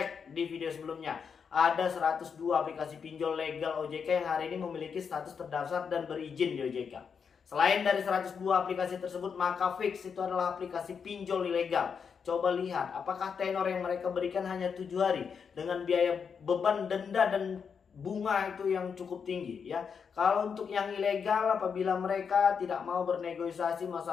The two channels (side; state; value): right; quieter; 6.4 dB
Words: di video sebelumnya. Ada 102 aplikasi pinjol legal OJK yang hari ini memiliki status terdaftar dan berizin di OJK. Selain dari 102 aplikasi tersebut, maka fix itu adalah aplikasi pinjol ilegal. Coba lihat apakah tenor yang mereka berikan hanya 7 hari dengan biaya beban denda dan bunga itu yang cukup tinggi ya. Kalau untuk yang ilegal, apabila mereka tidak mau bernegosiasi